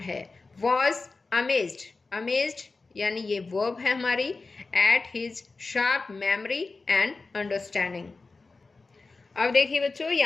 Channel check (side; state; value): right; quieter; 3.8 dB